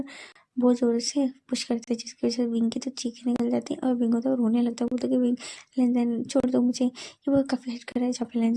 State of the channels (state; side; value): identical; both; correlation 1.00